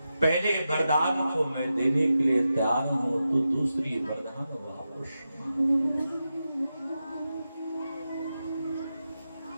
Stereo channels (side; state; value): both; inverted; correlation -0.90